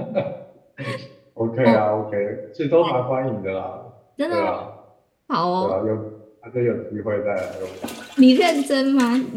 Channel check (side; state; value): both; identical; correlation 1.00